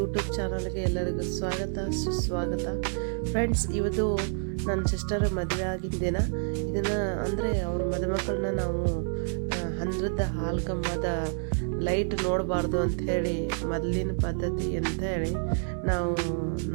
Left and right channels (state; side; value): silent; left; 59 dB below the other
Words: ಚಾನಲ್ಗೆ ಎಲ್ಲರಿಗೂ ಸ್ವಾಗತ ಸುಸ್ವಾಗತ. ಫ್ರೆಂಡ್ಸ್, ಇವತ್ತು ನನ್ನ ಸಿಸ್ಟರ್ ಮದುವೆ ಆಗಿದ್ದ ದಿನ. ಇದನ್ನು ಅಂದರೆ ಅವ್ರ ಮದುಮಕ್ಕಳನ್ನ ನಾವು ಹಂದ್ರದ ಹಾಲು ಕಂಬದ ಲೈಟ್ ನೋಡಬಾರ್ದು ಅಂಥೇಳಿ ಮೊದಲಿನ ಪದ್ಧತಿ ಅಂಥೇಳಿ ನಾವು